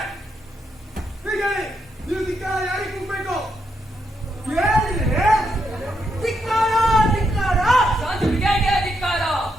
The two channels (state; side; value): normal; both; correlation 0.80